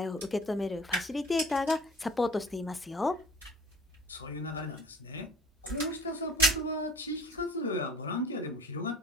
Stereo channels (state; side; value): normal; both; correlation 0.46